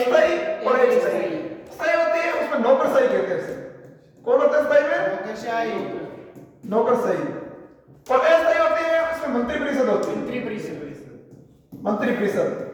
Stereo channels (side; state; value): both; identical; correlation 1.00